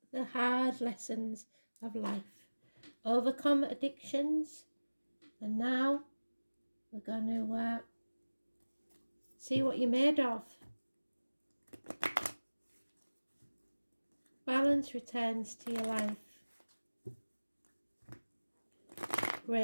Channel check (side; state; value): both; inverted; correlation -1.00